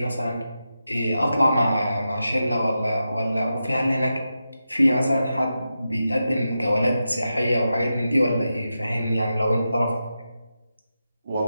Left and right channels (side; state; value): both; inverted; correlation -0.89